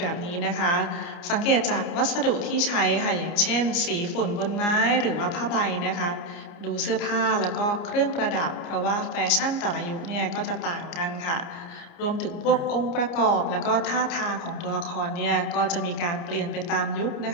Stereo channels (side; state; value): right; late; 29 ms